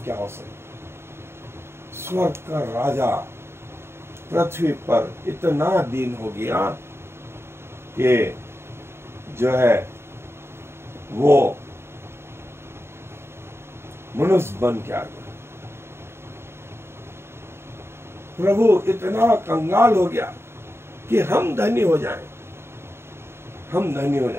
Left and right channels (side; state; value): left; late; 0.12 ms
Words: क्या हो सकती? स्वर्ग का राजा पृथ्वी पर इतना दीन हो गया कि जो है वो मनुष्य बन के आ गया। प्रभु इतना कंगाल हो गया कि हम धनी हो जाएं, हम धनी हो